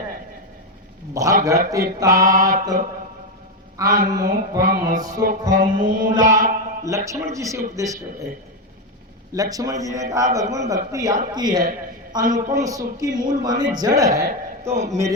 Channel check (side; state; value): both; normal; correlation 0.08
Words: भगति तात अनुपम सुख मूला। लक्ष्मण जी से उपदेश कर रहे। लक्ष्मण जी ने कहा भगवान भक्ति आपकी है, अनुपम सुख की मूल माने जड़ है, तो